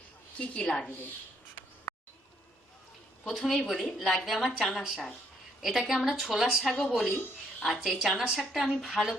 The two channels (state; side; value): normal; both; correlation 0.70